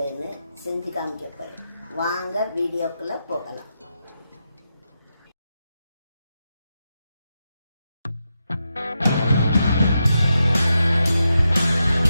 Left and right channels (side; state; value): both; inverted; correlation -0.87